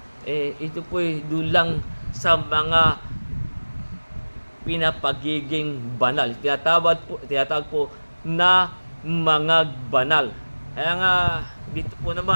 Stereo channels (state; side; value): inverted; both; correlation -1.00